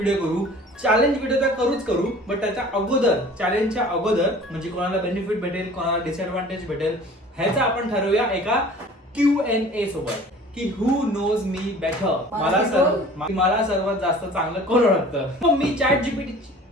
करू. चॅलेंज व्हिडिओ तर करू, बट त्याच्या अगोदर, चॅलेंजच्या अगोदर म्हणजे कोणाला बेनिफिट भेटेल, कोणाला डिसएडव्हान्टेज भेटेल, ह्याचा आपण ठरवूया एका Q&A सोबत की हु नोज मी बेटर. मला सर्वात जास्त चांगलं कोण ओळखतं. मी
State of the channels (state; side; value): normal; both; correlation 0.46